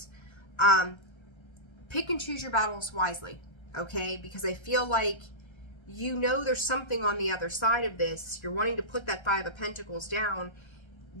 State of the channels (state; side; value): late; right; 1.3 ms